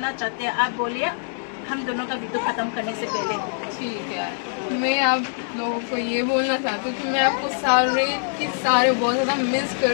चाहते हैं, आप बोलिए हम दोनों का वीडियो खत्म करने से पहले। ठीक है, मैं आप लोगों को ये बोलना चाहती हूँ कि मैं आपको सारे बहुत ज्यादा मिस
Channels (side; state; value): right; silent; digital silence